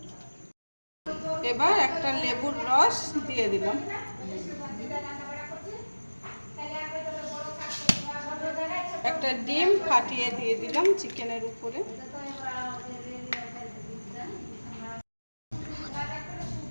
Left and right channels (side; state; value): both; inverted; correlation -1.00